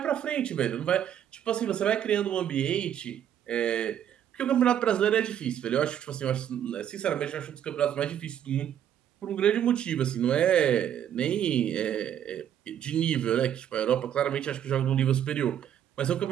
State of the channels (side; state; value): left; quieter; 9.9 dB